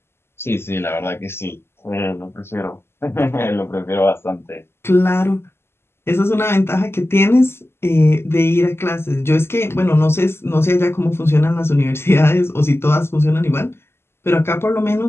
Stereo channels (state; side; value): late; right; 0.12 ms